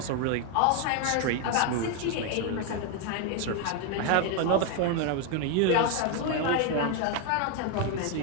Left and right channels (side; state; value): both; different; correlation 0.01